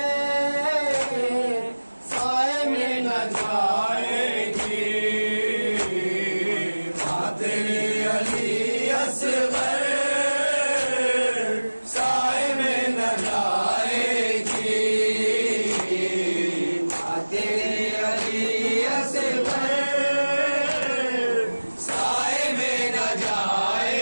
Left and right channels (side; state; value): both; inverted; correlation -1.00